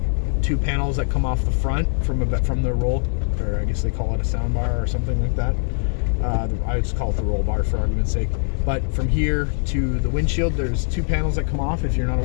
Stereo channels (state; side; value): silent; right; 64 dB below the other